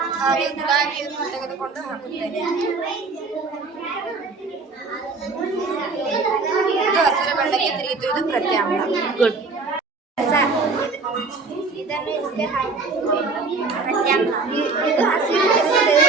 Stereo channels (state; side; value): quieter; left; 4.1 dB